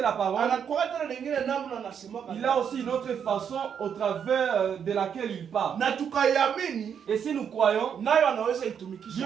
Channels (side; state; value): left; quieter; 7.8 dB